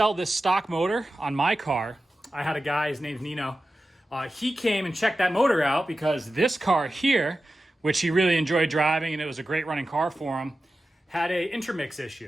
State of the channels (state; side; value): normal; both; correlation 0.93